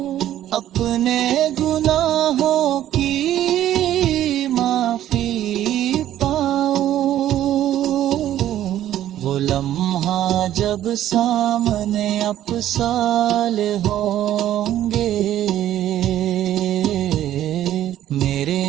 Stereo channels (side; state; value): left; quieter; 12.3 dB